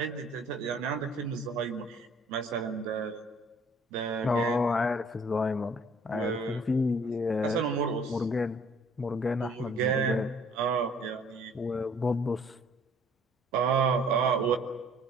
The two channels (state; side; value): normal; both; correlation 0.56